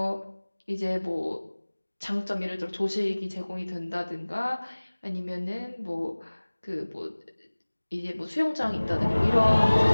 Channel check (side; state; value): both; inverted; correlation -1.00